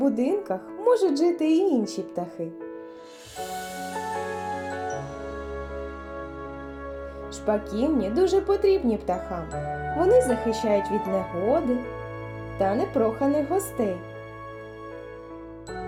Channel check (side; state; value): both; identical; correlation 1.00